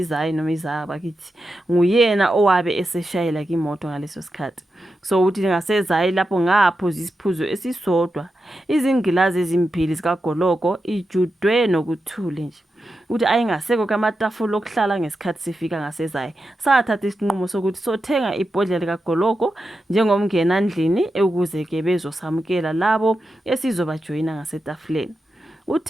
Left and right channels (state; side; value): normal; both; correlation 0.89